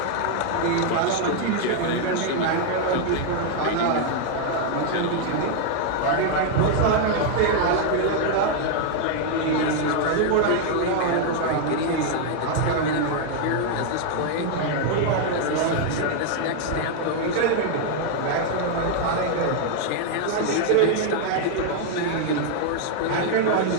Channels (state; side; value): different; both; correlation 0.00